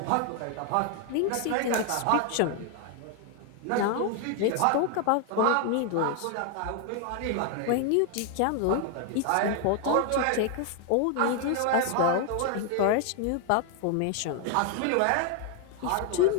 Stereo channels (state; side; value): different; both; correlation 0.01